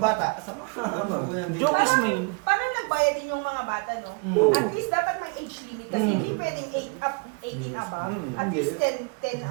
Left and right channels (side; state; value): left; quieter; 33.2 dB